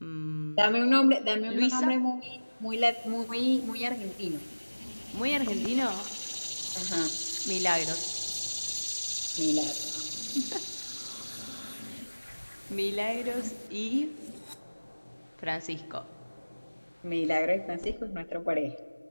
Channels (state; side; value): inverted; both; correlation -1.00